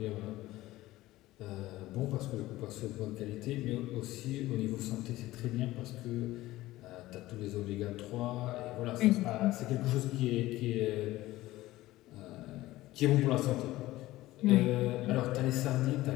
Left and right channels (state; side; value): quieter; right; 17.0 dB